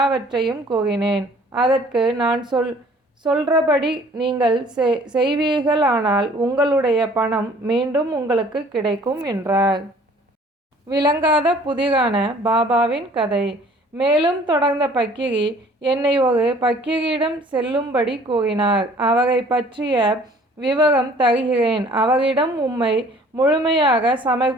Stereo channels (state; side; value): normal; both; correlation 0.54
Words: கூறினேன். அதற்கு நான் சொல்றபடி நீங்கள் செய்வீர்களானால் உங்களுடைய பணம் மீண்டும் உங்களுக்கு கிடைக்கும் என்றார். விளங்காத புதிரான பாபாவின் கதை. மேலும் தொடர்ந்த பக்கிரி என்னை ஒரு பக்கிரியிடம் செல்லும்படி கூறினார். அவரை பற்றிய விவரம் தருகிறேன். அவரிடம் உம்மை முழுமையாக